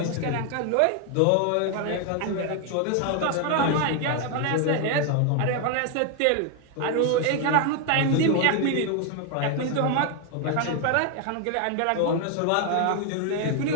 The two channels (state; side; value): different; both; correlation 0.01